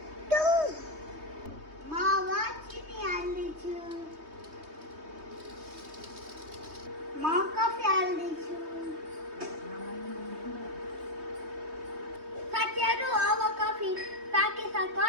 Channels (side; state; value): left; late; 3.2 ms